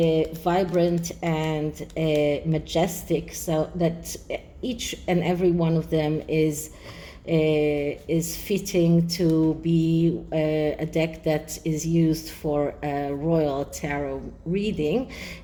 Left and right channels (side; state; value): both; identical; correlation 1.00